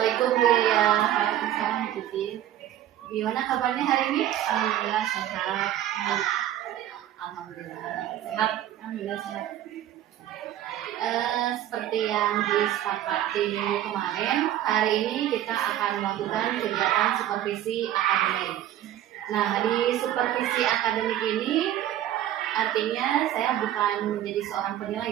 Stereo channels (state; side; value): quieter; left; 12.1 dB